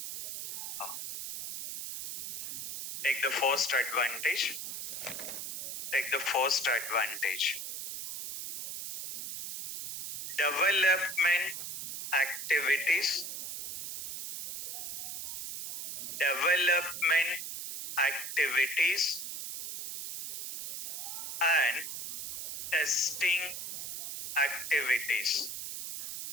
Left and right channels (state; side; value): noise; right; hiss, 7 dB below the sound